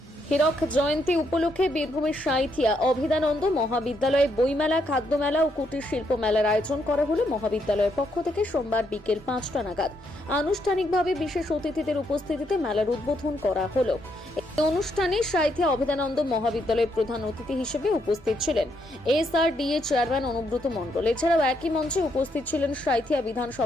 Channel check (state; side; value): normal; both; correlation 0.76